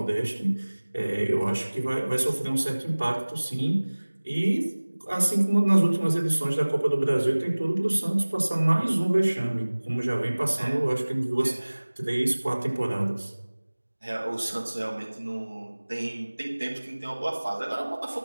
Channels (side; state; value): both; inverted; correlation -1.00